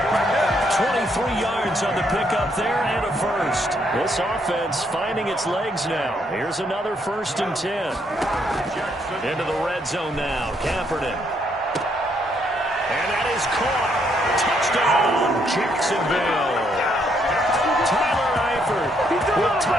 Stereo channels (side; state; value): both; normal; correlation 0.72